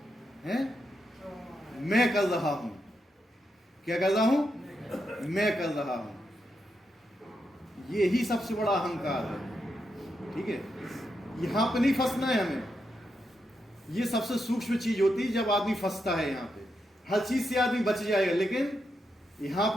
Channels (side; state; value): both; normal; correlation 0.84